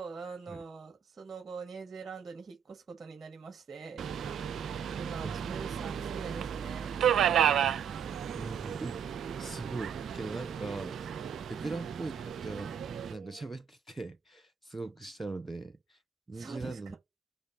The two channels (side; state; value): left; quieter; 7.5 dB